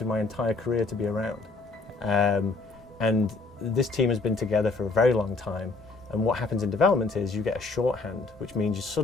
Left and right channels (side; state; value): right; quieter; 3.8 dB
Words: my entire career to be around. And this team has been together for a very long time. And what happens in development is you get a shorthand, which means